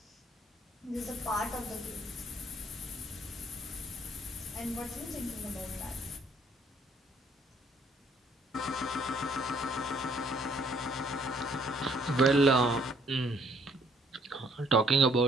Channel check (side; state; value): both; normal; correlation 0.63